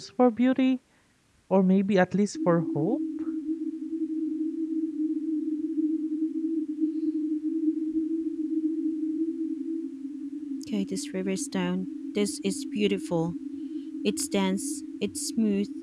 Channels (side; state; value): both; identical; correlation 1.00